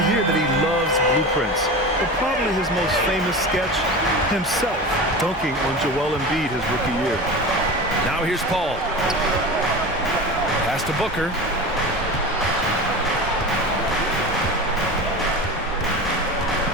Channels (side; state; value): both; normal; correlation 0.30